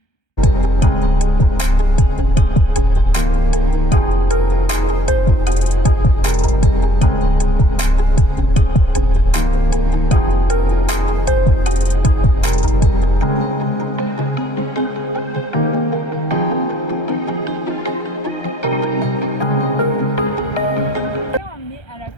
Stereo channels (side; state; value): right; late; 1.3 ms